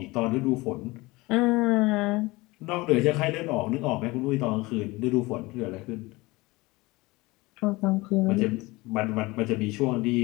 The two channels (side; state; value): right; quieter; 22.0 dB